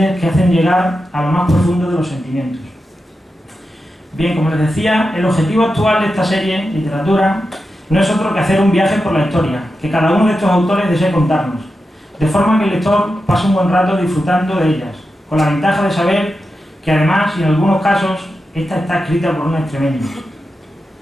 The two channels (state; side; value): normal; both; correlation 0.90